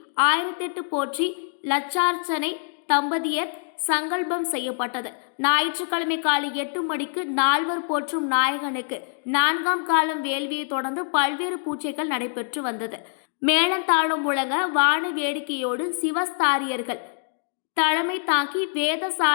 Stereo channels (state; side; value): silent; right; 62 dB below the other